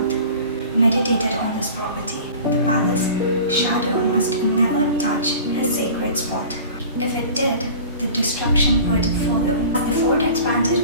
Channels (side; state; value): both; inverted; correlation -0.41